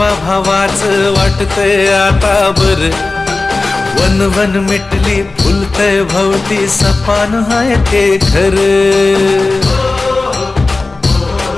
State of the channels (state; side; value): quieter; right; 3.4 dB